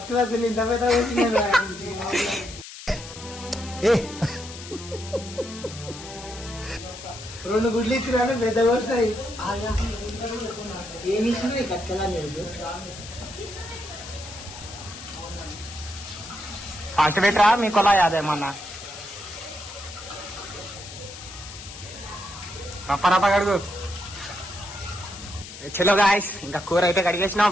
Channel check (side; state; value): left; noise; hiss, 13 dB below the sound